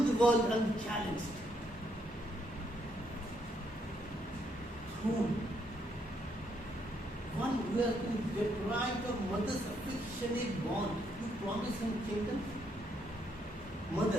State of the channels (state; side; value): normal; both; correlation 0.73